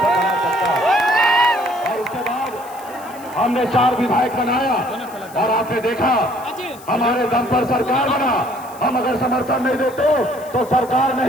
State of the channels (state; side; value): noise; left; hiss, 21 dB below the sound